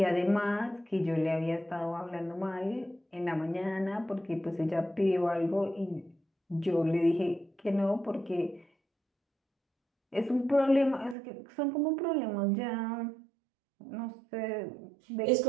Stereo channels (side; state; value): left; drops out; at 11.2 s